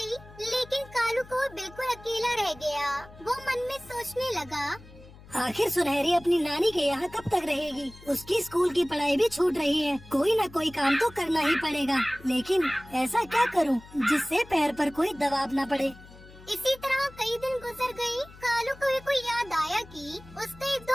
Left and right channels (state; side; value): noise; left; hum, 21 dB below the sound